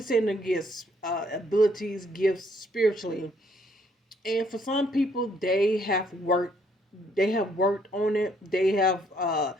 saying the gifts, abilities, gifts spiritually. And for some people, they have worked on it. They have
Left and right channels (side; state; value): both; normal; correlation 0.67